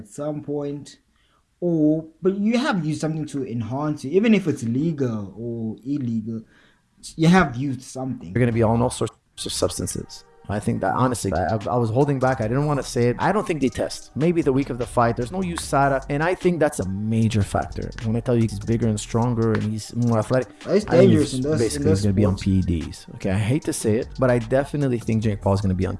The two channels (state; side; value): identical; both; correlation 1.00